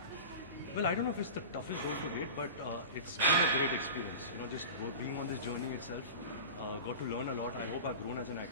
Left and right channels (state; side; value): inverted; both; correlation -0.32